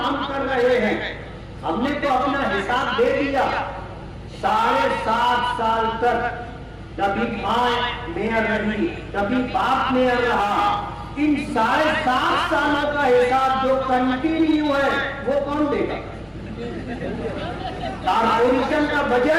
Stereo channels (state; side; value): identical; both; correlation 1.00